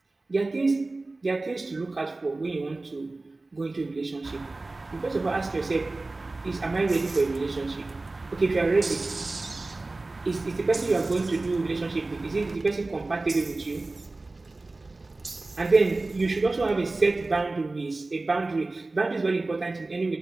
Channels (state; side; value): quieter; left; 3.2 dB